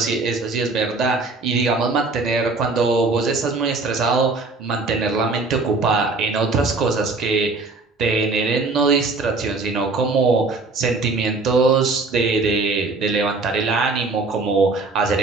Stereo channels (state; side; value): quieter; left; 3.7 dB